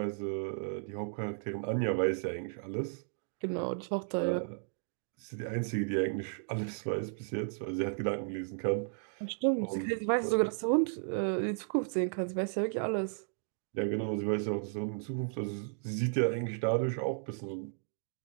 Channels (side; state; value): left; silent; digital silence